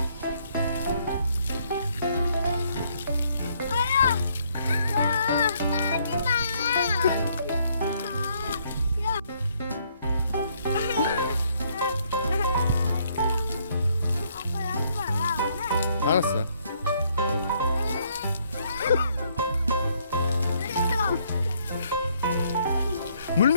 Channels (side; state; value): both; inverted; correlation -0.68